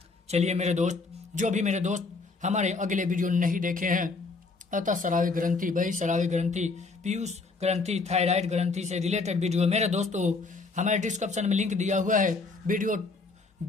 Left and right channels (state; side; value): quieter; right; 4.0 dB